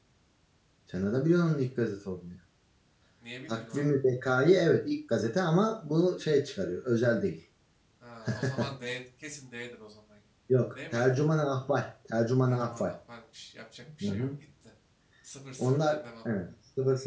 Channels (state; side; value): identical; both; correlation 1.00